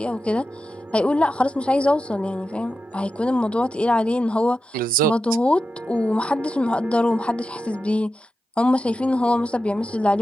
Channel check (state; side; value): normal; both; correlation 0.91